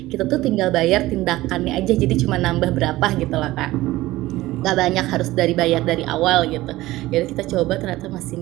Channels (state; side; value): quieter; left; 17.4 dB